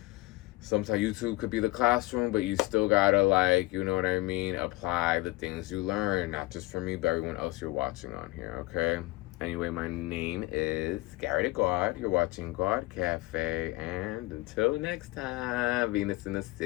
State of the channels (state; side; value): quieter; right; 20.8 dB